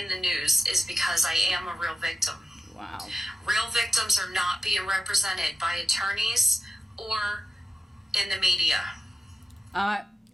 the news is because I am a real victim. Wow. Real victims are not being represented by attorneys or in the media.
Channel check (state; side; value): normal; both; correlation 0.92